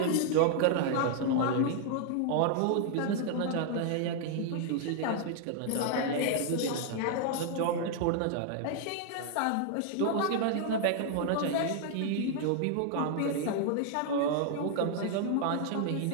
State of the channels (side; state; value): both; different; correlation 0.00